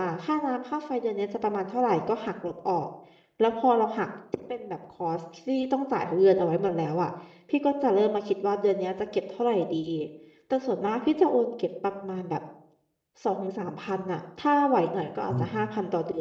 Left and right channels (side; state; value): both; identical; correlation 1.00